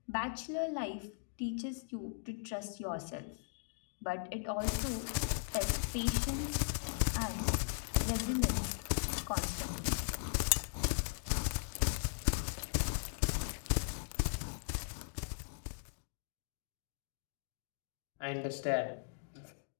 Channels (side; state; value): right; silent; digital silence